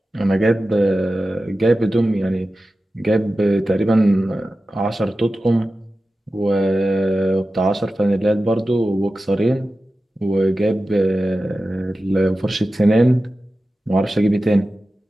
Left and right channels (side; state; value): both; normal; correlation 0.94